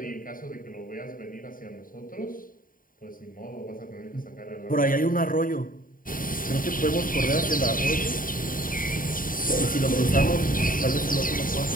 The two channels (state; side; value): late; right; 0.40 ms